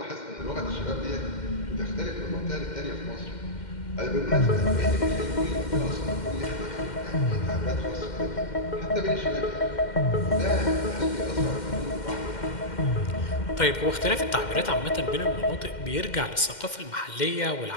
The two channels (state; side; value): late; right; 2.1 ms